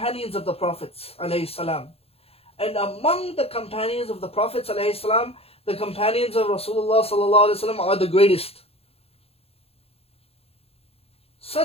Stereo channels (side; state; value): right; late; 0.29 ms